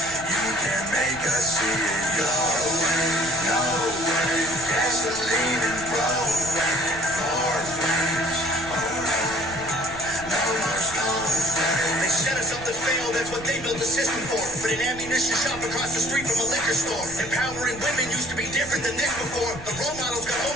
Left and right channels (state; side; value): noise; right; rumble, 16 dB below the sound